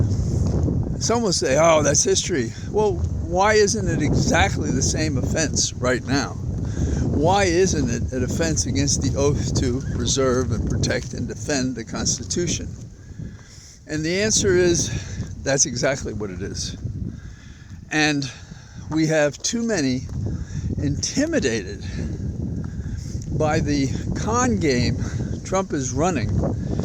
Some will say, oh, that's history. Well, why isn't it exactly the same offense right now? Why isn't it an offense against the oath to preserve and protect and defend the Constitution? And the answer is, that's exactly what it is. And we have too many intimidated by the con game Trump is running,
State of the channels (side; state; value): both; identical; correlation 1.00